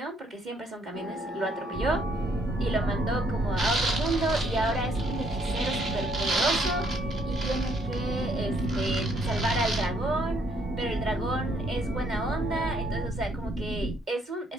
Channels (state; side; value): normal; both; correlation 0.68